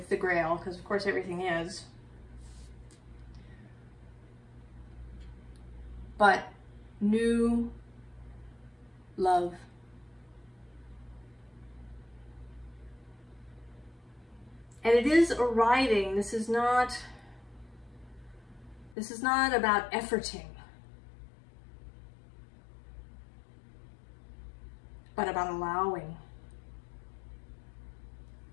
the Grail, because of course everything is. But new love. And it is arriving. This is not about efforting, but about allowing.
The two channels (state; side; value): drops out; right; at 18.9 s